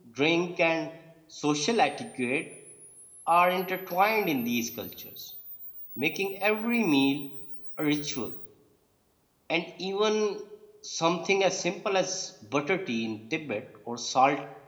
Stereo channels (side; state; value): both; identical; correlation 1.00